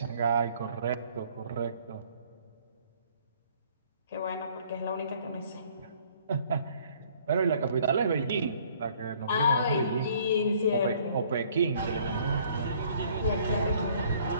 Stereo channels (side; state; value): both; inverted; correlation -0.59